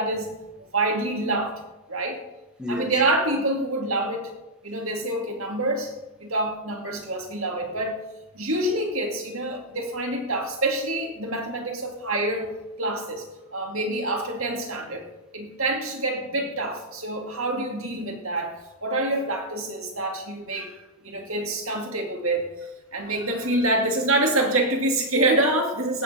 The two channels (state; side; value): normal; both; correlation -0.07